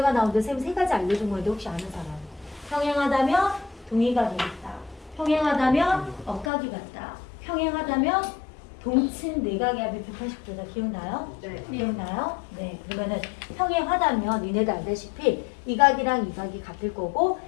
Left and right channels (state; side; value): drops out; right; at 6.5 s